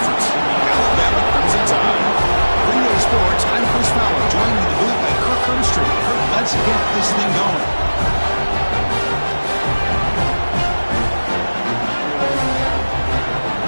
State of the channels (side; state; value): both; inverted; correlation -1.00